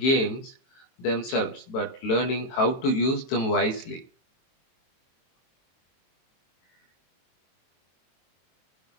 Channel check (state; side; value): late; right; 23 ms